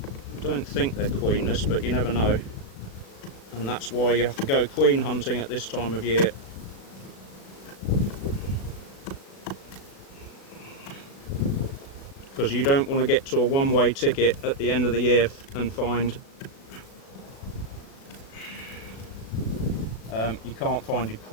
I don't think they're queenless, but you never know. And that's why you have to go queen hunting at this time of year. Because you don't want to get to a one-way ticket at the end of the year and find you can't find your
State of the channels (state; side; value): late; right; 36 ms